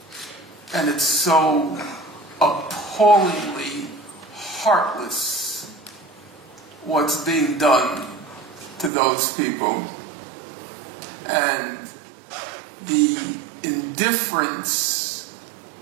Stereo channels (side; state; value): left; drops out; at 8.9 s